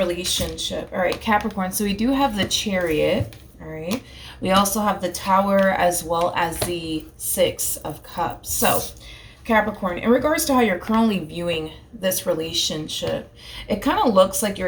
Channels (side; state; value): both; identical; correlation 1.00